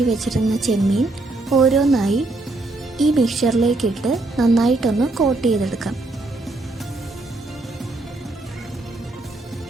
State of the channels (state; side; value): quieter; left; 3.0 dB